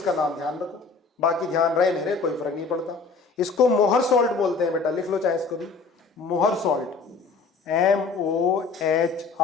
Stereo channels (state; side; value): quieter; right; 4.5 dB